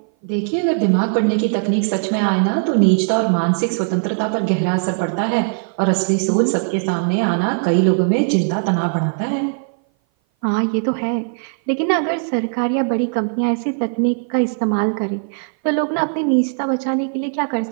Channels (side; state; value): left; silent; 58 dB below the other